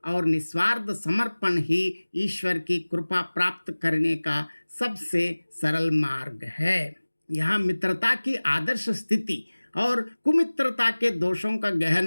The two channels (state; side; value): inverted; both; correlation -1.00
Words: और निस्वार्थ समर्पण ही ईश्वर की कृपा प्राप्त करने का सबसे सरल मार्ग है। यहाँ मित्रता की आदर्श स्थिति और कुमित्रता के दोषों का